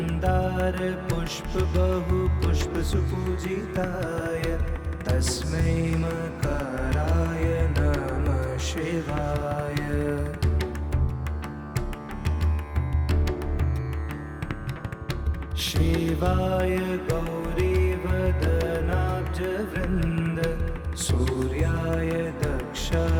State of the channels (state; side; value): identical; both; correlation 1.00